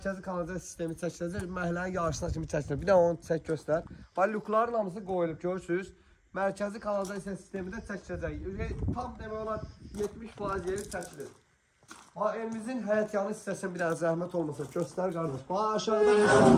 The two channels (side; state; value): both; identical; correlation 1.00